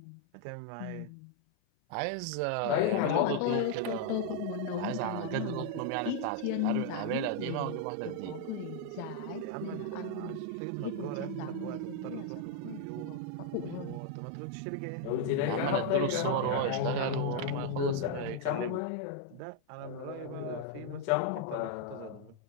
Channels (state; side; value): different; both; correlation 0.00